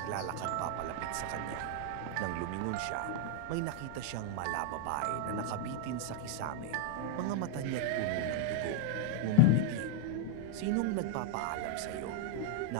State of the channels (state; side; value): different; both; correlation 0.00